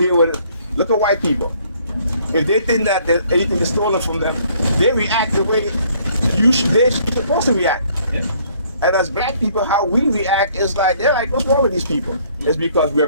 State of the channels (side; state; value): both; inverted; correlation -0.62